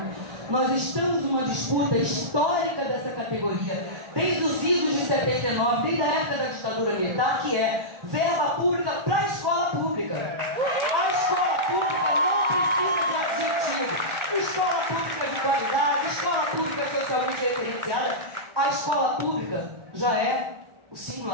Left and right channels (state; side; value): late; left; 1.4 ms